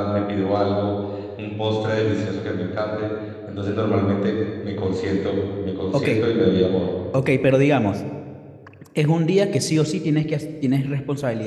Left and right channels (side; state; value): both; identical; correlation 1.00